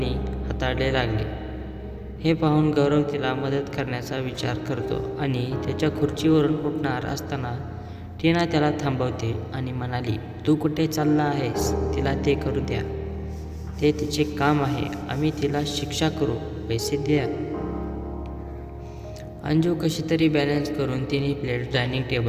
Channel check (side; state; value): both; identical; correlation 1.00